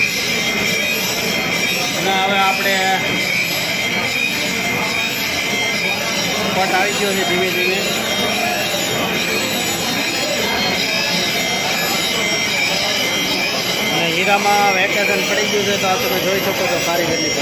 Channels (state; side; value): identical; both; correlation 1.00